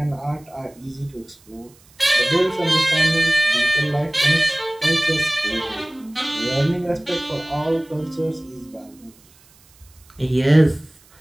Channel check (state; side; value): noise; right; hiss, 29 dB below the sound